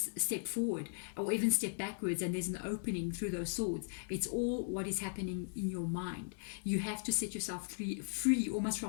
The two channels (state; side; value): silent; right; digital silence